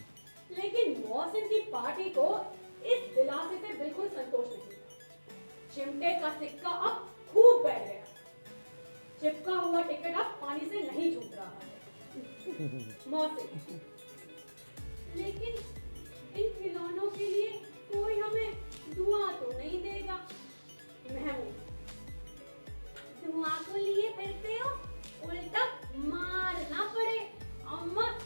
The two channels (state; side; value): inverted; both; correlation -1.00